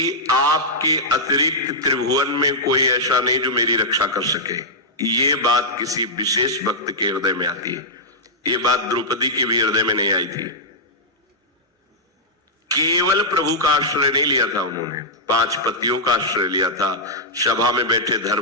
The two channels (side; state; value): both; normal; correlation -0.10